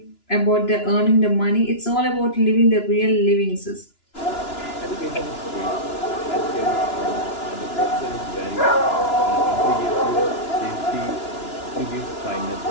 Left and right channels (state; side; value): late; right; 2.9 ms